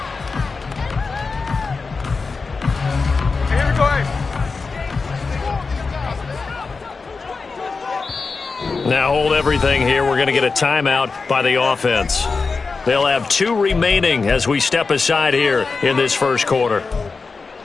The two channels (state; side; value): quieter; right; 4.4 dB